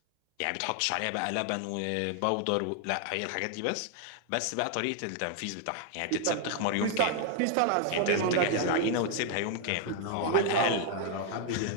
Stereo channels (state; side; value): different; both; correlation 0.00